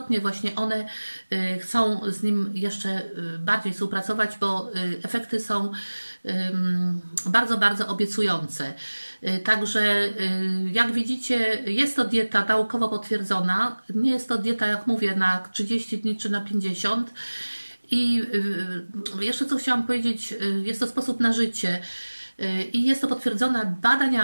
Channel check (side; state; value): both; inverted; correlation -1.00